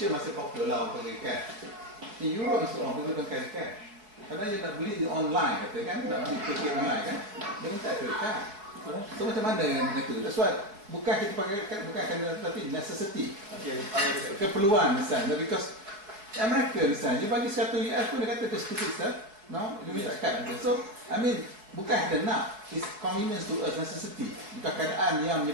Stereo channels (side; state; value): left; late; 4.7 ms